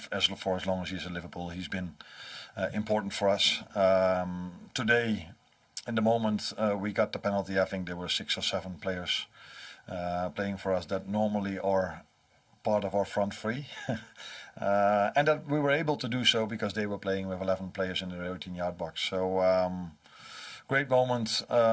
as long as he's at Liverpool, he's been important for us. Today, in the moment we got the penalty, I think there were 6 or 7 players playing for us that normally are part of our front three. And that we were able to do so because they were playing with 11 players in the 18-yard box. So great moment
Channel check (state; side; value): identical; both; correlation 1.00